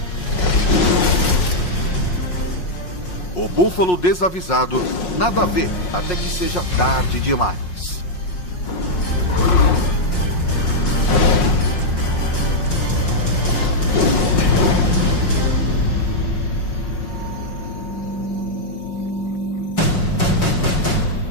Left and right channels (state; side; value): late; right; 5.5 ms